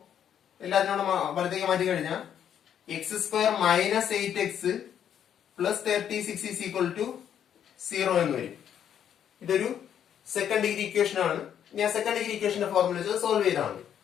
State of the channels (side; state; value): right; quieter; 9.3 dB